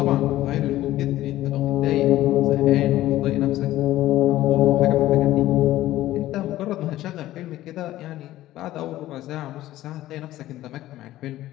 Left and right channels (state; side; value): quieter; right; 14.9 dB